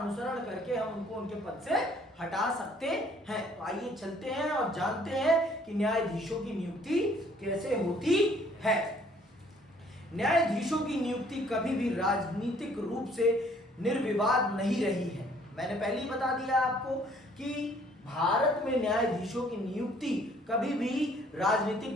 करके हम उनको उनके पद से हटा सकते हैं। तो आइए चलते हैं और जानते हैं कि न्यायाधीशों की नियुक्ति कैसे होती है। न्यायाधीशों की नियुक्ति कभी भी राजनीतिक रूप से निर्विवाद नहीं रही है। मैंने पहले ही बता दिया आपको कि भारत में न्यायाधीशों की नियुक्ति कभी भी राजनीतिक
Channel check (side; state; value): both; normal; correlation 0.60